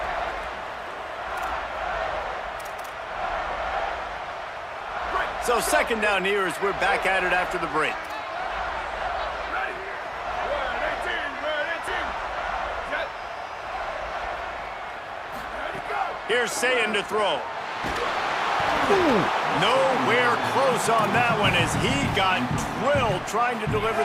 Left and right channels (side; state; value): both; identical; correlation 1.00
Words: So second down here as we're back at it after the break. Here's Sayin to throw. Nowhere close on that one as he got drilled trying to deliver